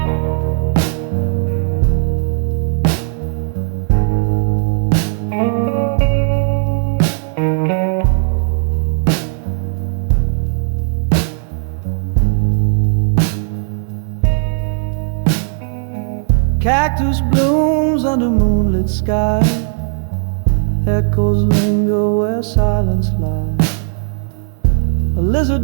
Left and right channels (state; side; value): silent; left; digital silence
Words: cactus blooms under moonlit sky. Echoes linger where silence lies. A